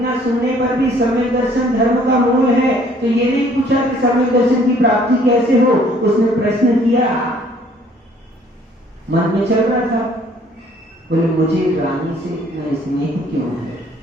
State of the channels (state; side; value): normal; both; correlation 0.59